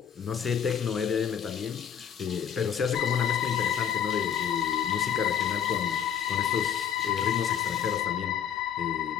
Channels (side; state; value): right; quieter; 8.4 dB